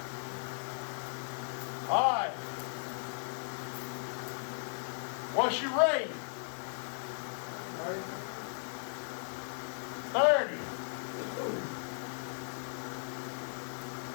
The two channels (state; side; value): silent; right; digital silence